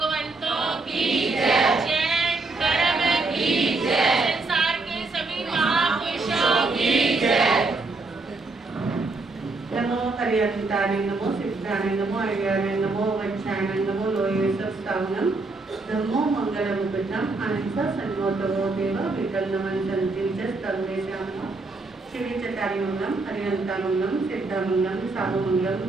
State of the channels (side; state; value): left; quieter; 3.5 dB